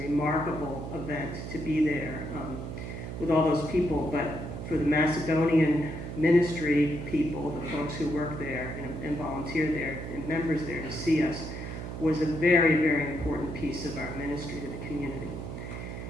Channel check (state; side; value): noise; right; hum, 7 dB below the sound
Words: event to be there with all those people, but for the Macedonian ministry people, the folks who work there and volunteer there and members there to see us was a very, very important piece of our ministry to the community.